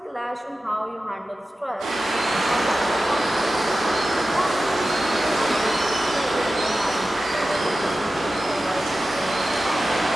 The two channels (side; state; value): both; normal; correlation 0.94